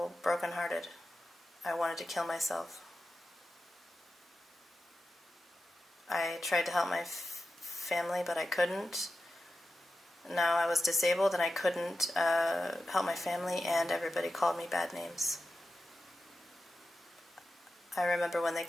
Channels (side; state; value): both; normal; correlation 0.92